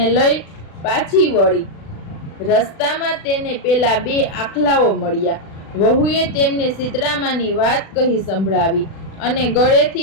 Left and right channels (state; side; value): late; right; 36 ms